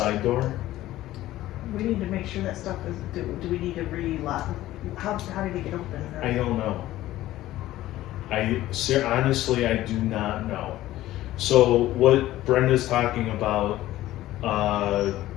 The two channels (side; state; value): right; quieter; 15.2 dB